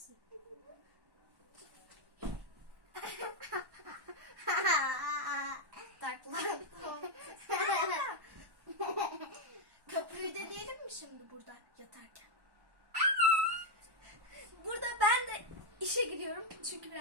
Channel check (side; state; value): left; late; 1.1 ms